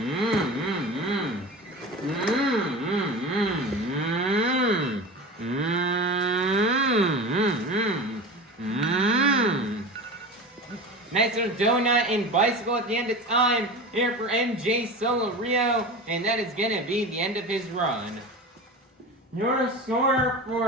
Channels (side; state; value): both; normal; correlation 0.31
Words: Nice little donut and bicycle at the end of time here for MJ Solorio, and that is going to be the end of his run. Your score